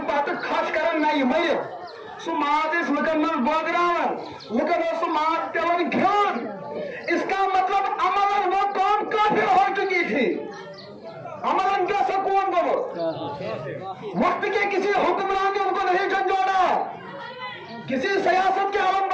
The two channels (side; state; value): both; identical; correlation 1.00